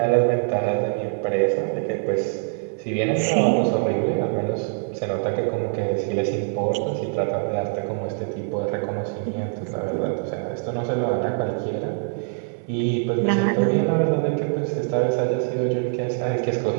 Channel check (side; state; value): left; silent; 59 dB below the other